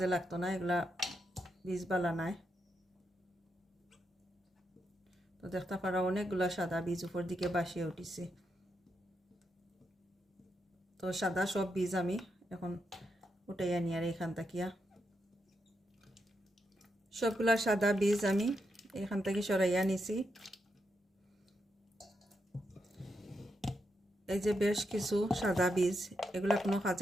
লাগতো না, এগুলা বীজ বালা নাই। তো দেখতে পারা অনেকগুলা সাদা বীজ উপর দিকে বাসিয়ে উঠিছে। তো সাদা সব বীজ আমি এখন উঠাইয়া নিয়ে আর এখান থাকিয়া সবগুলা সাদা বীজ আমি এখান থেকে সরাইয়া নিছি। এই যে বেশ কিছু সাদা বীজ, এগুলা কোনো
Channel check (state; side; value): normal; both; correlation 0.83